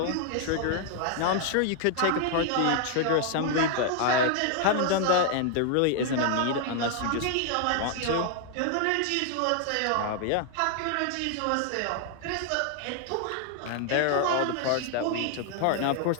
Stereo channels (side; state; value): both; different; correlation 0.00